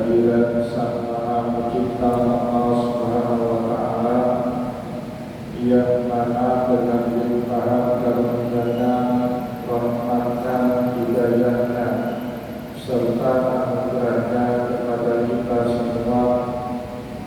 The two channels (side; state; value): both; identical; correlation 1.00